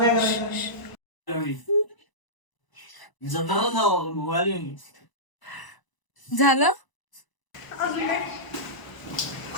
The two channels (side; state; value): right; late; 1.0 ms